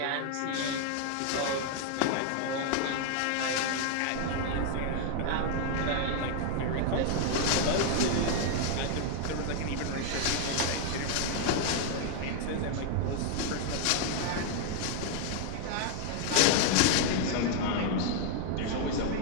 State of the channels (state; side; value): different; both; correlation 0.00